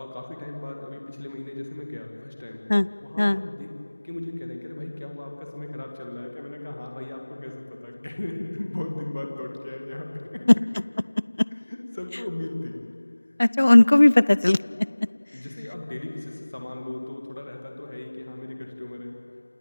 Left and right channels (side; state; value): both; inverted; correlation -1.00